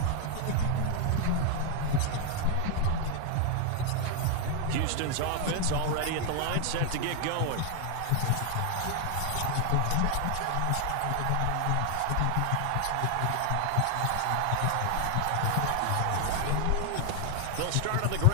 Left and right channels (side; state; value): both; different; correlation 0.00